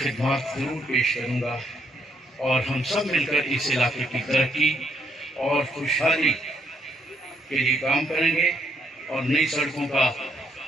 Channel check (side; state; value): both; normal; correlation 0.72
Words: ضرور پیش کروں گا اور ہم سب مل کر اس علاقے کی ترقی اور خوشحالی کے لیے کام کریں گے، اور نئی سڑکوں کا